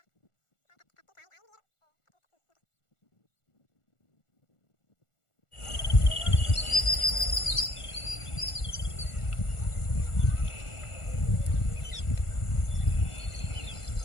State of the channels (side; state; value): right; late; 1.4 ms